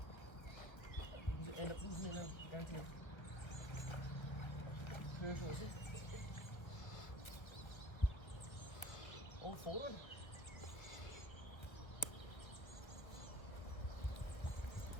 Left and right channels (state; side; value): late; right; 1.6 ms